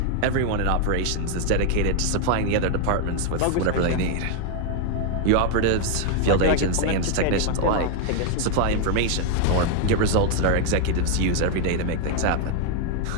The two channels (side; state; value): both; different; correlation 0.00